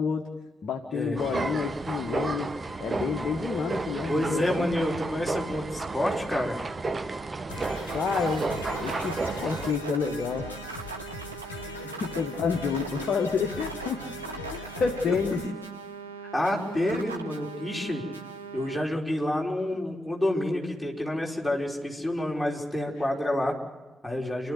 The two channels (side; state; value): both; normal; correlation 0.79